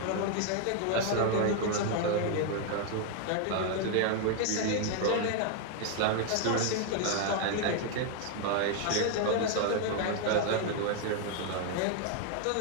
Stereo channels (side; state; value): both; different; correlation 0.00